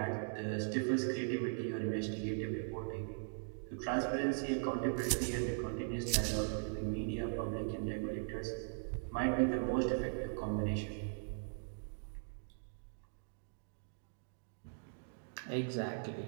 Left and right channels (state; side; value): silent; left; digital silence